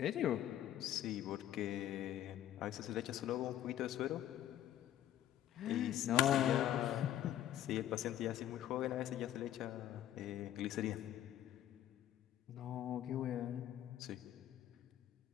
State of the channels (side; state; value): right; quieter; 12.1 dB